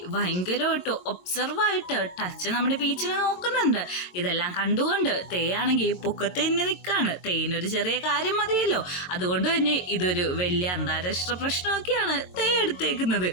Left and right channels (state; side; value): late; right; 22 ms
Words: ഭയങ്കരമായിട്ട് ഒബ്സർവായിട്ട് ടച്ച് നമ്മുടെ പീച്ചിനെ നോക്കുന്നുണ്ട്. ഇതെല്ലാം കണ്ടുകൊണ്ട് തേയാണെങ്കിൽ പൊക്കത്ത് തന്നെ നിൽക്കാണ്. തേനൊരു ചെറിയ കാര്യം മതിയല്ലോ, അതുകൊണ്ട് തന്നെ ഇതൊരു വലിയ അന്താരാഷ്ട്ര പ്രശ്നമൊക്കെയാണ് തേ എടുത്തേക്കുന്നത്.